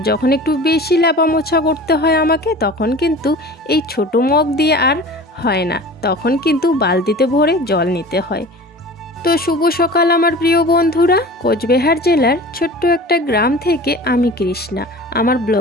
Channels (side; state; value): both; normal; correlation 0.39